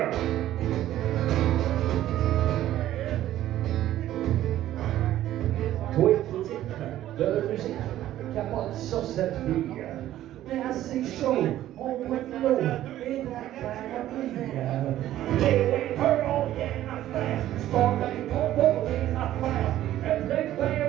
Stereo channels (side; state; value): left; quieter; 13.3 dB